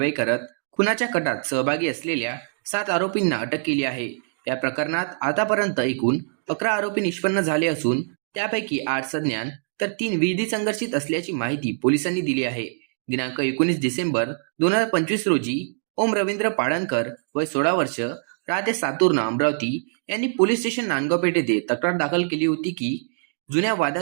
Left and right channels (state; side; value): silent; left; digital silence